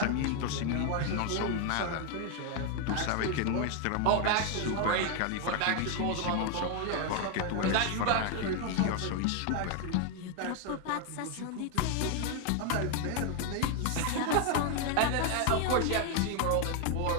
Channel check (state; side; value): different; both; correlation 0.01